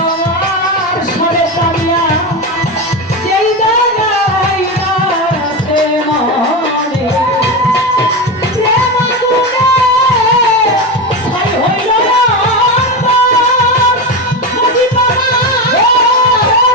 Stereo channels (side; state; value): both; normal; correlation 0.17